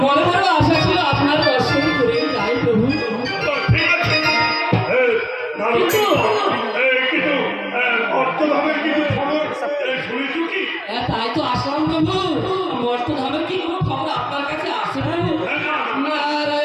মনে মনে আশা ছিল আপনার দর্শন করে যাই প্রভু। তাই তো আসলাম প্রভু। মর্তধামের কি কোনো খবর আপনার কাছে আসে প্রভু?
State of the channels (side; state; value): both; identical; correlation 1.00